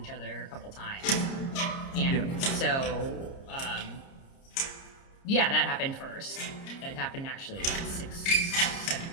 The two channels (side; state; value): right; late; 30 ms